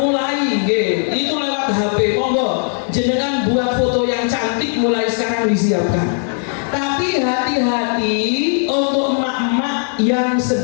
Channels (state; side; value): silent; right; 57 dB below the other